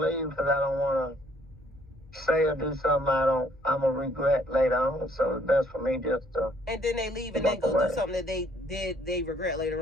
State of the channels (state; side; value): normal; both; correlation 0.64